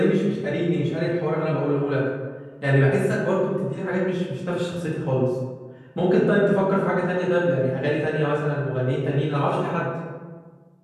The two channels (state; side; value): identical; both; correlation 1.00